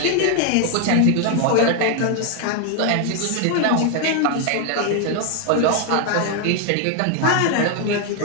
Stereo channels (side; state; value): both; different; correlation 0.00